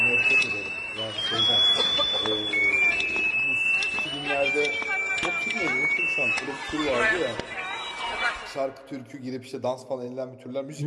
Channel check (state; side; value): identical; both; correlation 1.00